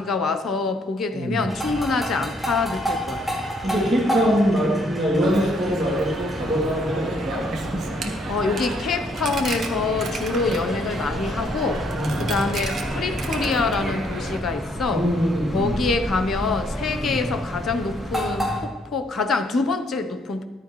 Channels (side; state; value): both; normal; correlation 0.68